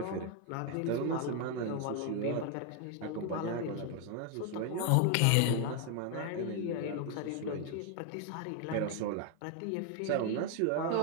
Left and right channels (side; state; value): both; different; correlation 0.01